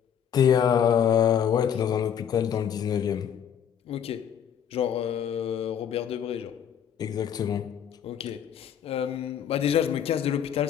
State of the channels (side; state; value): right; quieter; 8.8 dB